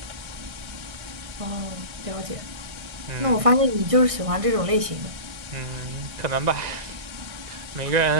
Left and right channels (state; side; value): late; left; 1.6 ms